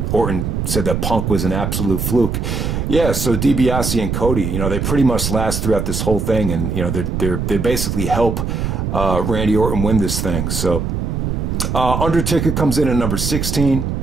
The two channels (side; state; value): right; noise; rumble, 2 dB below the sound